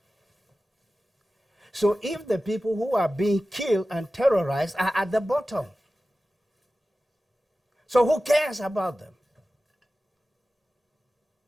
So if the people who are being killed and terrorized are at the bottom, so who cares about them?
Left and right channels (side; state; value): both; normal; correlation 0.95